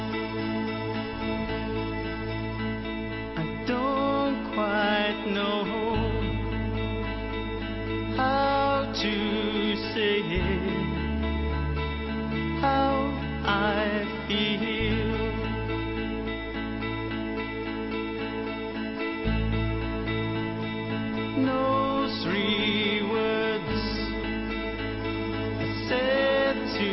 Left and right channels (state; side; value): identical; both; correlation 1.00